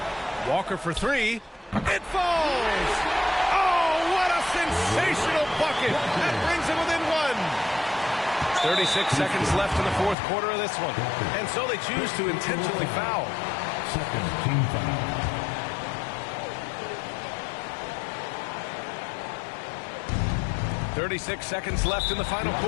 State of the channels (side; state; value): right; drops out; at 10.2 s